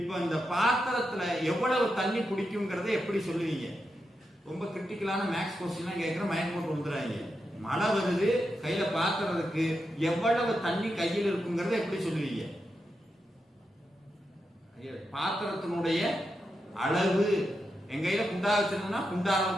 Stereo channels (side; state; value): both; normal; correlation 0.86